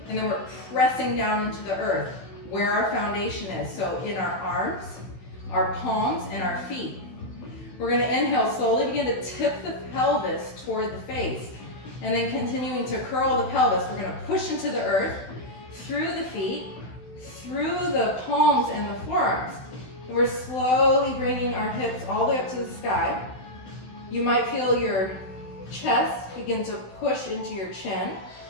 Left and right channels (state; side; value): late; right; 16 ms